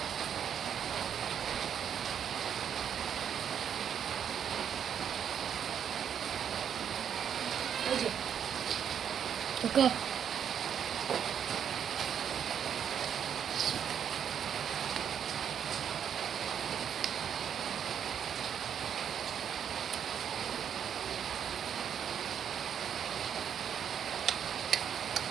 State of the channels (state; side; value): quieter; left; 8.4 dB